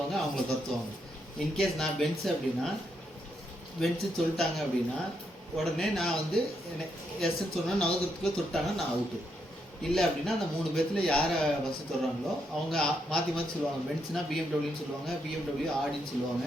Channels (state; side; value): normal; both; correlation 0.79